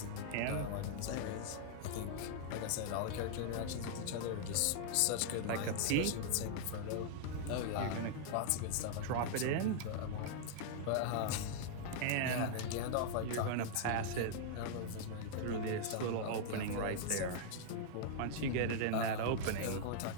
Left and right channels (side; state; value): both; different; correlation -0.01